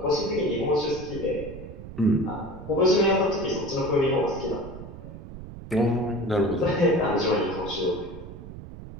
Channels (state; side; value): noise; right; rumble, 13 dB below the sound